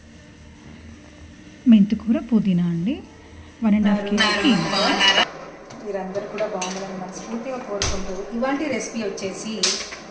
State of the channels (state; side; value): identical; both; correlation 1.00